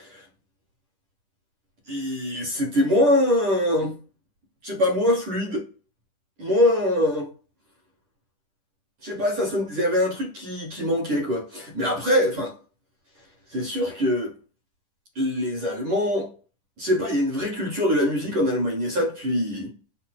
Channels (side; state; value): left; late; 10 ms